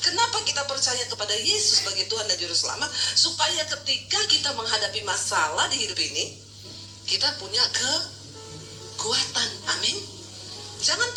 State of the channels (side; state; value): both; identical; correlation 1.00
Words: kita percaya kepada Yesus sebagai Tuhan dan Juru Selamat? Supaya ketika kita menghadapi masalah di hidup ini, kita punya kekuatan. Amin. Jangan